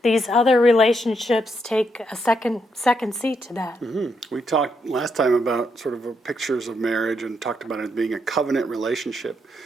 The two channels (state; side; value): normal; both; correlation 0.78